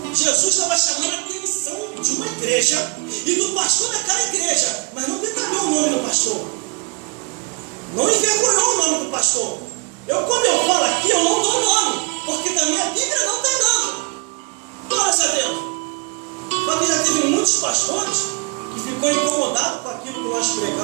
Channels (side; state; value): left; quieter; 30.6 dB